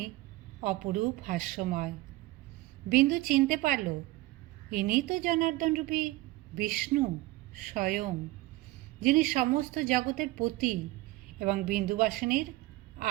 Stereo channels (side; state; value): left; quieter; 18.9 dB